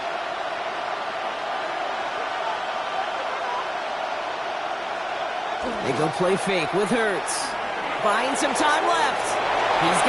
They go play fake with Hurts. Buying some time left. He's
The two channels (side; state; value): both; identical; correlation 1.00